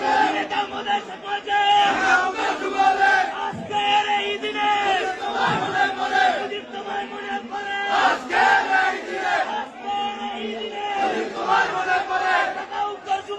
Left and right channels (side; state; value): both; identical; correlation 1.00